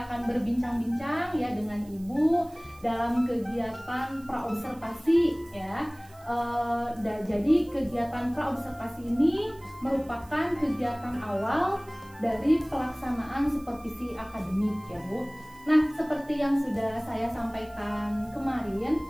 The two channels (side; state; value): right; noise; hiss, 26 dB below the sound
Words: akan berbincang-bincang ya dengan Ibu dalam kegiatan praobservasi ya. Jadi kegiatan praobservasi ini merupakan kegiatan awal dari pelaksanaan supervisi akademik ya Bu. Nah, seperti yang sudah saya sampaikan kemarin